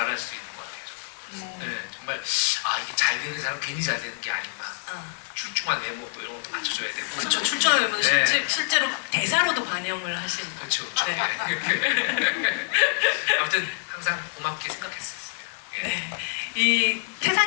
수 있는 것 같아요. 저도. 네, 정말 이게 잘 되는 사람 괜히 잘 되는 게 아니구나. 출중한 외모 또 이런 것도 맞춰줘야 되고. 그렇죠. 출중하면 네. 실제로 대사로도 반영을 하신. 그렇죠. 네. 아무튼 항상 고맙게 생각했었어요. 네. 이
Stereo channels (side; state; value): right; silent; digital silence